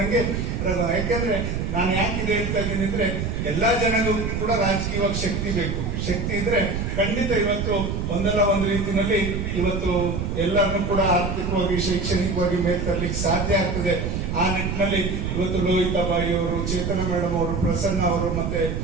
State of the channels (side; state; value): right; noise; rumble, 2 dB below the sound